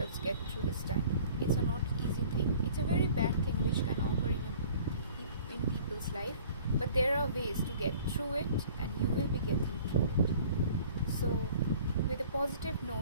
get through this time. It's a not easy thing. It's a very bad thing which can occur in people's life, but there are ways to get through it and you will be getting through it. So with a positive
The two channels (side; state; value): both; inverted; correlation -0.49